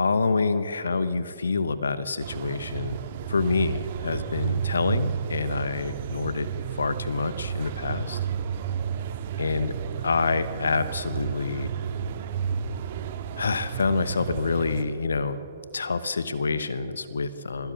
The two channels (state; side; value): inverted; both; correlation -0.76